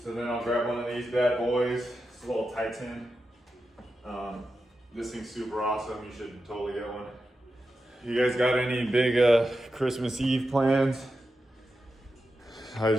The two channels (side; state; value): both; normal; correlation 0.90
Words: So then I'll grab one of these bad boys. It's a little Titan. This thing's super awesome. You should totally get one. You guys got any big Christmas Eve plans? I